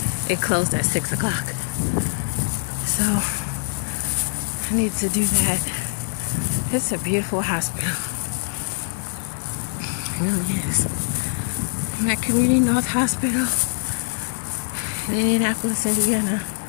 it closed at 6 o'clock. So I need to do that. It's a beautiful hospital. It really is. I'm at Community North Hospital in Indianapolis, Indiana.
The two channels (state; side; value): silent; right; 63 dB below the other